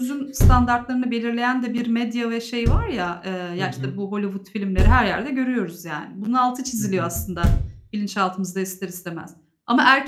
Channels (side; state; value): both; identical; correlation 1.00